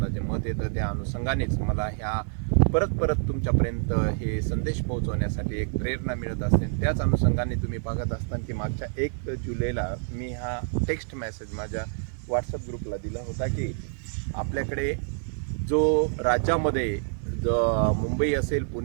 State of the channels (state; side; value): silent; left; 60 dB below the other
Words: जे मत येतं त्या अनुषंगानेच मला ह्या परत तुमच्यापर्यंत हे संदेश पोहोचवण्यासाठी एक प्रेरणा मिळत असते. त्याच अनुषंगाने तुम्ही बघत असताना की मागच्या 1 जुलैला मी हा टेक्स्ट मेसेज माझ्या व्हॉट्सअप ग्रुपला दिला होता की आपल्याकडे जो राज्यामध्ये मुंबई असेल,